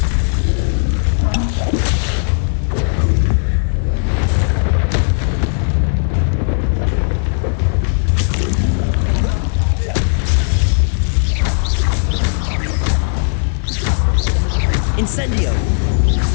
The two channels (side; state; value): right; silent; digital silence